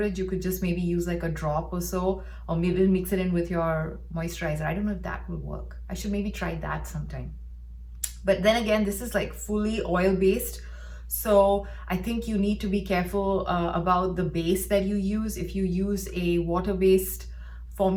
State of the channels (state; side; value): identical; both; correlation 1.00